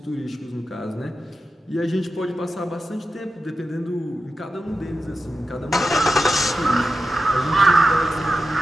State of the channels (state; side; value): normal; both; correlation 0.91